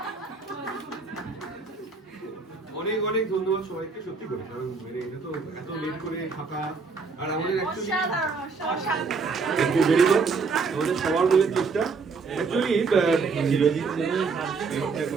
অনেক অনেক ধন্যবাদ সবাইকে, সত্যি করে, কারণ মানে এটা তো এত লেট করে থাকা আর আমাদের actually thank you very much, আমাদের সবার মিলে চেষ্টা অ্যাকচুয়ালি চিরজিৎ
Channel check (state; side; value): quieter; left; 4.8 dB